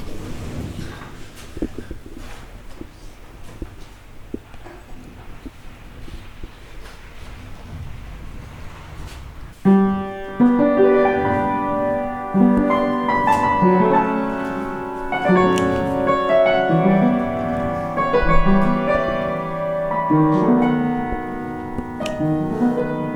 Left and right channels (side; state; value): both; identical; correlation 1.00